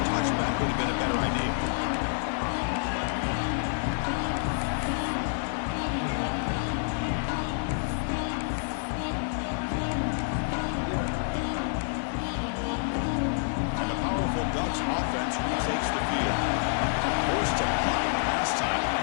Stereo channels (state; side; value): silent; right; digital silence